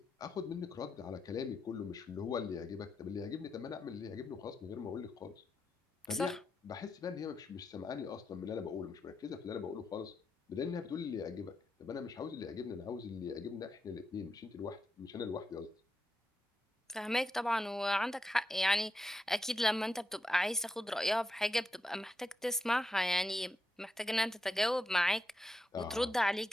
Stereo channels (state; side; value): normal; both; correlation 0.85